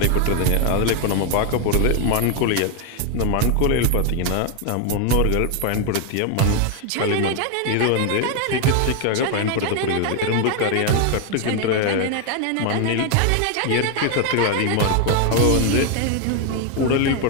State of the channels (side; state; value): both; different; correlation 0.01